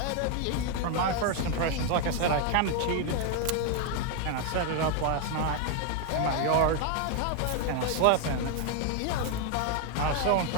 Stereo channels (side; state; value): both; different; correlation 0.01